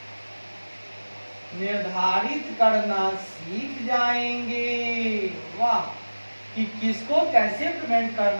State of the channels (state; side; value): inverted; both; correlation -1.00